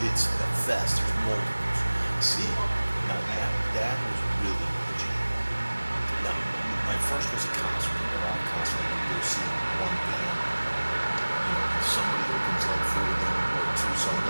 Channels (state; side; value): inverted; both; correlation -1.00